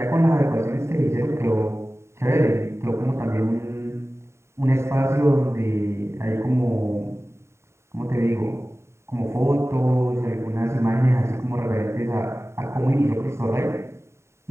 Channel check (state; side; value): late; left; 0.13 ms